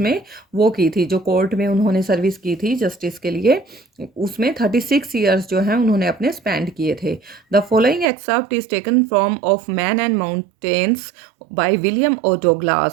में वो की थी, जो कोर्ट में उन्होंने सर्विस की थी जस्टिस के लिए, उसमें 36 ईयर्स जो हैं उन्होंने अपने स्पेंड किए थे। The following excerpt is taken from of man and mountains by William O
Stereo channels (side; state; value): left; drops out; at 8.1 s